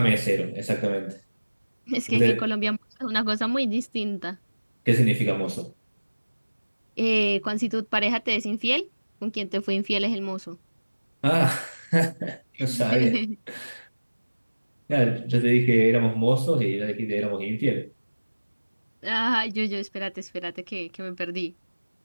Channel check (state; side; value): inverted; both; correlation -1.00